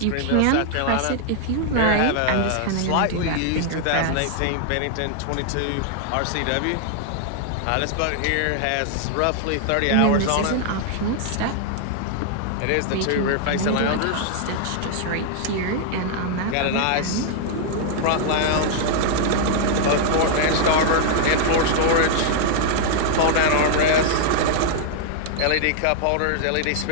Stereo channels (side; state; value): both; different; correlation 0.00